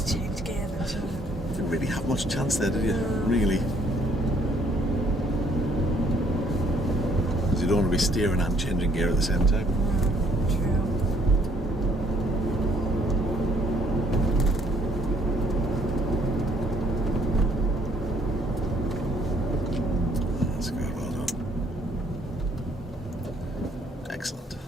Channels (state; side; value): normal; both; correlation 0.64